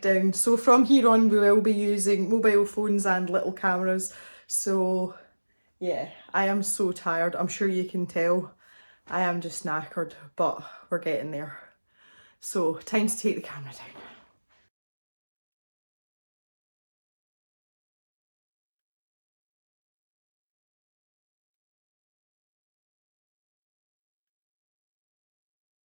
So from here on we will be using mobile phones and little cameras. So yeah, I am so tired. I'm sure you can tell. I am just knackered, but we're getting there. So time to take the camera down.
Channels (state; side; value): inverted; both; correlation -1.00